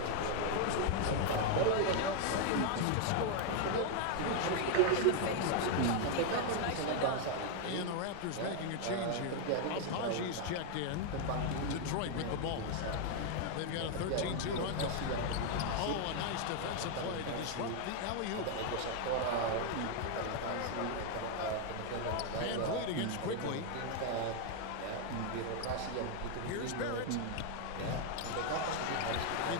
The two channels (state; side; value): different; both; correlation 0.00